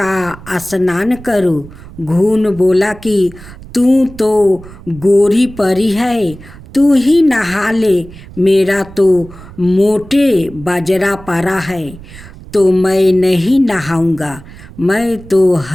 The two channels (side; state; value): right; noise; rumble, 18 dB below the sound